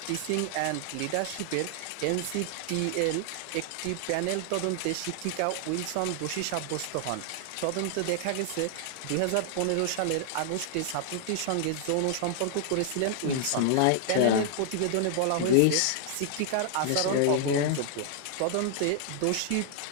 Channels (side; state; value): both; different; correlation 0.00